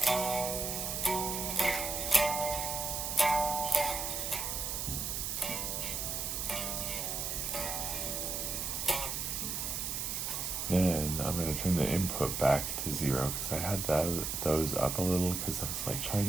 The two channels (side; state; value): right; noise; hiss, 2 dB below the sound